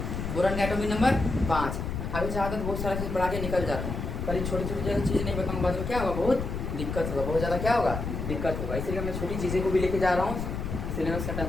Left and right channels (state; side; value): noise; left; rumble, 4 dB below the sound